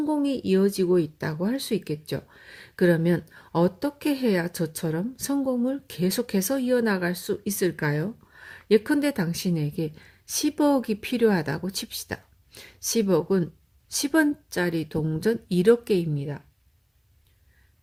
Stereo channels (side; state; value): both; identical; correlation 1.00